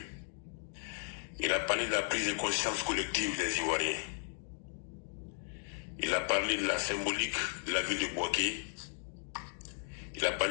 Il a parlé de la prise de conscience collective des Ivoiriens. Il a parlé de la symbolique de la ville de Bouaké. Il a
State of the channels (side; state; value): right; silent; 54 dB below the other